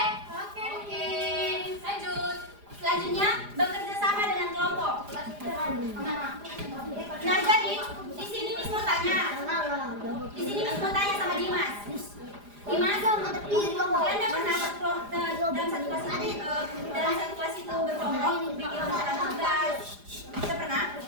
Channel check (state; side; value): late; left; 4.9 ms